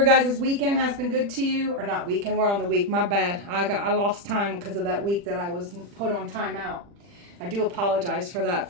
guys' weekend has been good to you. Or not weekend, we're on the week. My bad. I lost time because of that week that I was put on timeout. I do apologize for that,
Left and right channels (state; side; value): late; left; 40 ms